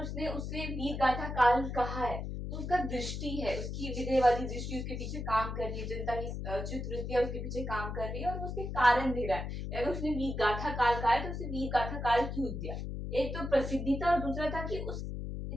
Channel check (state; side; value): noise; left; hum, 5 dB below the sound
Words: उसने उसे वीर गाथा काल कहा है तो उसका दृष्टि है, उसकी विधेयवादी दृष्टि उसके पीछे काम कर रही है, जनता की चित्रवृत्तियां उसके पीछे काम कर रही है और उसके कारण दे रहा है। अगर उसने वीर गाथा काल कहा है तो उसे वीर गाथा काल क्यों दिया? एक तो प्रसिद्धि था और दूसरा था कि उस